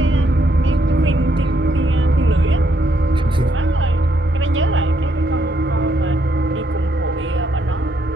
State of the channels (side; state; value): both; normal; correlation 0.74